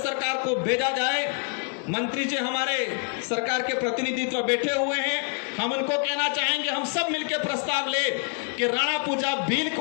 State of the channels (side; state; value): right; quieter; 38.6 dB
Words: को भेजा जाए। मंत्री जी हमारे सरकार के प्रतिनिधित्व बैठे हुए हैं, हम उनको कहना चाहेंगे, हम सब मिलकर प्रस्ताव ले कि राणा पूजा भील